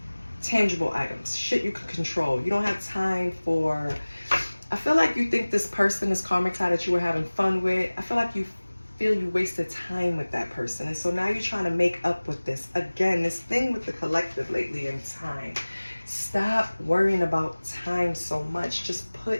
tangible items, shit you can control. You don't have time for, I feel like you think this person, this karmic tie that you were having fun with, I feel like you feel you wasted time with that person. And so now you're trying to make up with this. Again, this thing with the collective lately in time. Stop worrying about time so much. Just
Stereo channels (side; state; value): both; inverted; correlation -1.00